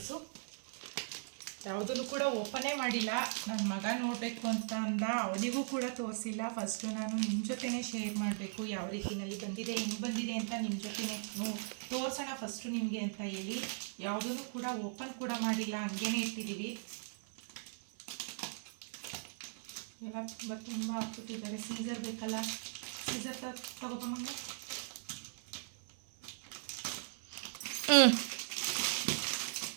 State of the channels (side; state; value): left; silent; 52 dB below the other